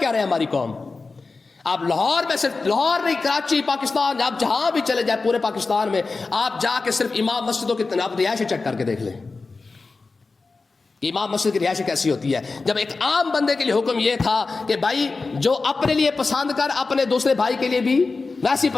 کیا رہے ہماری قوم؟ آپ لاہور میں, صرف لاہور نہیں, کراچی, پاکستان, آپ جہاں بھی چلے جائیں پورے پاکستان میں, آپ جا کے صرف امام مسجدوں کی آپ رہائش چیک کر کے دیکھ لیں کہ امام مسجد کی رہائش کیسی ہوتی ہے. جب ایک عام بندے کے لیے حکم یہ تھا کہ بھائی جو اپنے لیے پسند کر اپنے دوسرے بھائی کے لیے بھی ویسی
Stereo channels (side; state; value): right; quieter; 4.0 dB